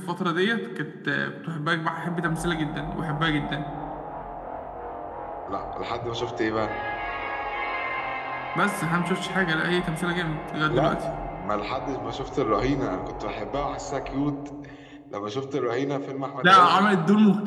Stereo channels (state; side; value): identical; both; correlation 1.00